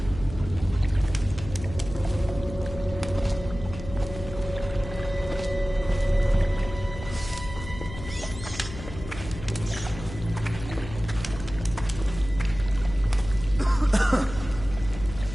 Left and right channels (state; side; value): noise; left; hum, 12 dB below the sound